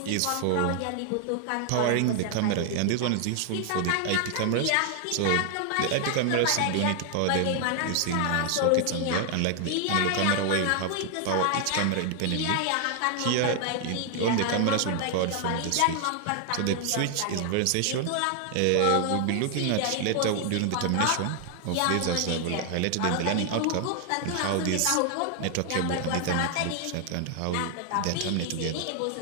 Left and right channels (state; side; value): different; both; correlation 0.00